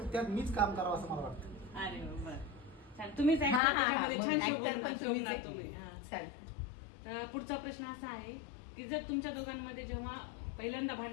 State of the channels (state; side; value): drops out; right; at 3.6 s